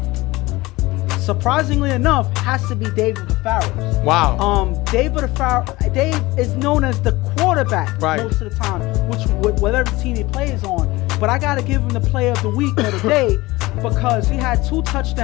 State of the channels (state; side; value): quieter; right; 20.5 dB